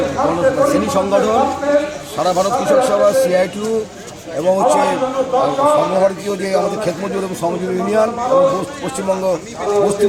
শ্রেণী সংগঠন, সারা ভারত কৃষক সভা, CITU এবং সর্বভারতীয় যে আমাদের ক্ষেতমজুর এবং শ্রমজীবী ইউনিয়ন এবং পশ্চিমবঙ্গ বস্তি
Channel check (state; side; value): identical; both; correlation 1.00